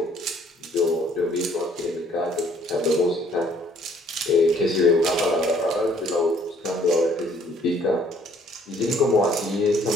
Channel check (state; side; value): normal; both; correlation 0.61